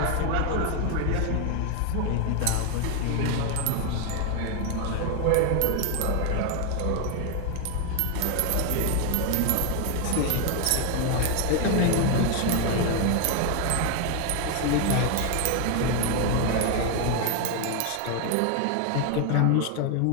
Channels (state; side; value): different; both; correlation 0.01